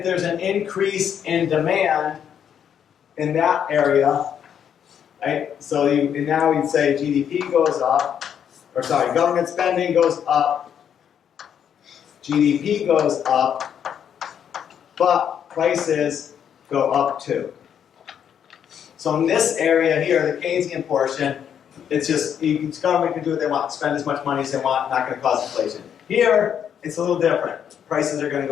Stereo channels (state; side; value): quieter; right; 8.6 dB